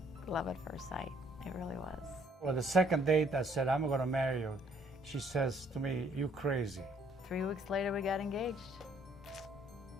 love at first sight. It really was. Well, the second date, I said, I'm going to marry you. She says to me, you crazy. 3 weeks later, we got engaged.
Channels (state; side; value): normal; both; correlation 0.64